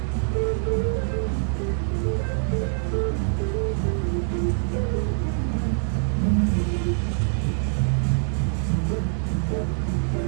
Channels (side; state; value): left; silent; digital silence